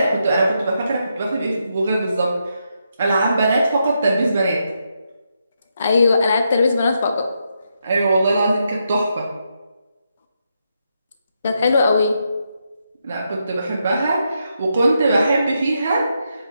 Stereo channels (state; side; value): inverted; both; correlation -0.82